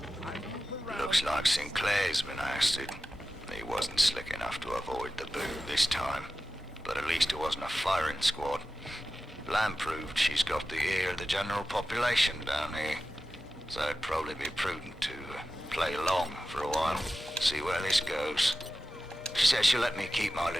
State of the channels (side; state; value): both; normal; correlation 0.94